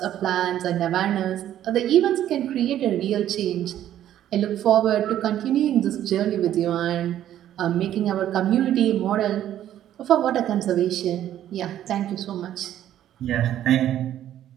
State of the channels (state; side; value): quieter; left; 11.6 dB